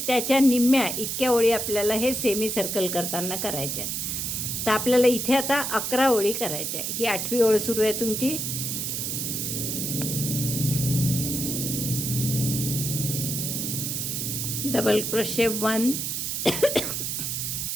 त्याच्या निम्म्या इतक्या ओळी आपल्याला हे सेमी सर्कल करताना करायच्या आहेत. तर आपल्याला इथे आता 11 ओळी करायच्या आहे. ही 8वी ओळ सुरू आहे तुमची. डबल क्रोशे 1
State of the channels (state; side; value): noise; right; hiss, 2 dB below the sound